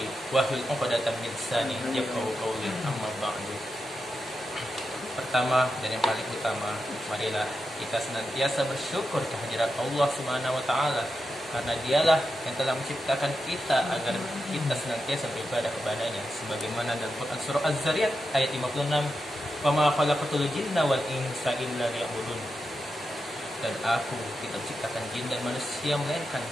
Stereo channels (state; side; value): normal; both; correlation 0.88